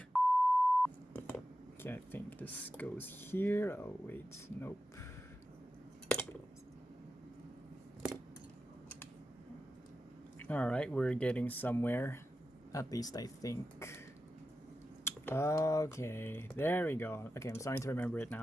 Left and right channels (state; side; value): normal; both; correlation 0.91